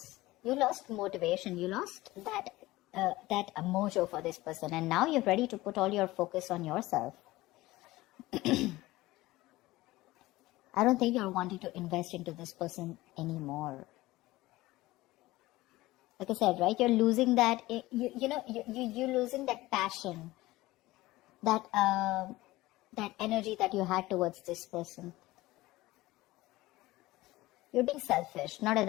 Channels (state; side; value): quieter; right; 18.6 dB